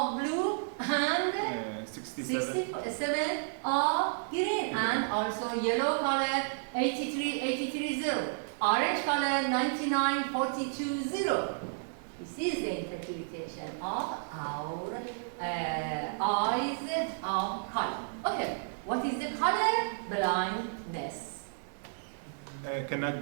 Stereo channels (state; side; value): silent; left; digital silence